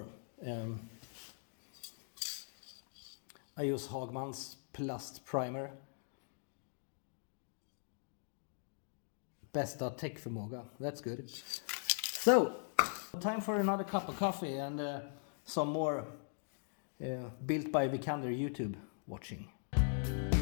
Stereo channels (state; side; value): silent; right; digital silence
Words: I use Hagman's Plast Primer. Bästa täckförmåga, that's good. So, time for another cup of coffee and some more built by Vikander YouTube watching.